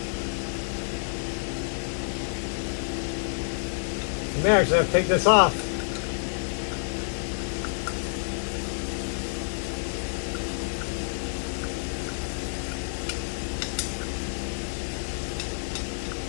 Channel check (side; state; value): right; silent; digital silence